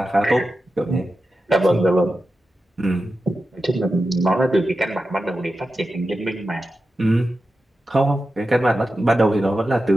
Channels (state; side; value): normal; both; correlation 0.91